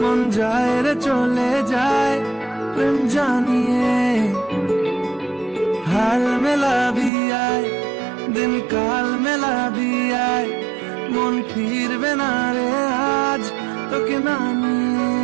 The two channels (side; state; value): left; drops out; at 7.1 s